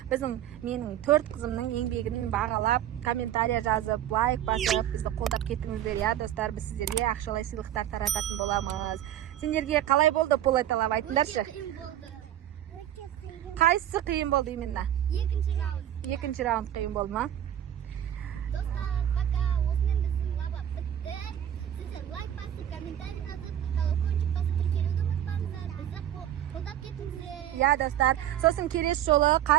Менің 4 қызымның еңбегін бағалап, комментария жазып, лайк басып, бізді қолдап кеттіңіздер. Я, достар, біз сіздерге ақшалай сыйлықтар тарататын боламыз. Сендерге қалай болды полета лава, айтыңдаршы? Қайсысы қиын болды именно? Екінші раунд қиын болды ма? Достар, пока. Осымен біздің лава бітті. Сіздер лайк басып, комментарий жазып, колокольчик басып, тіркелуді ұмытпаңыздар. Бізді қолдап кетіңіздер. Я, достар, сосын келесі жолы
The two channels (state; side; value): quieter; left; 11.4 dB